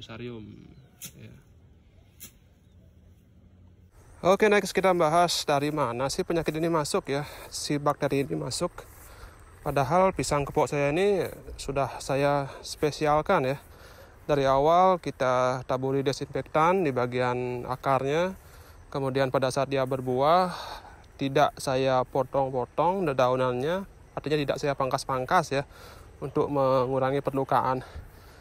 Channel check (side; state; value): both; identical; correlation 1.00